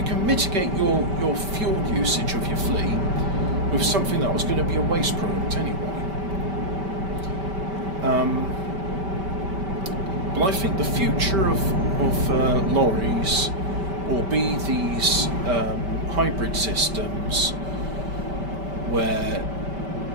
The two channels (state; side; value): late; left; 5.1 ms